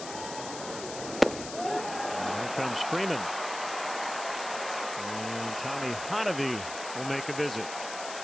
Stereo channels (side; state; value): left; noise; hiss, 9 dB below the sound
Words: Comes Freeman, and Tommy Hotovy will make a visit.